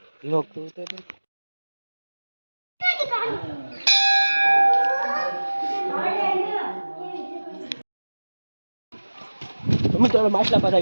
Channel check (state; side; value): inverted; both; correlation -1.00